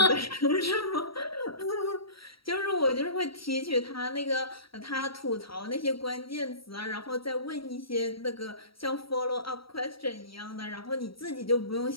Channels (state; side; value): late; right; 0.75 ms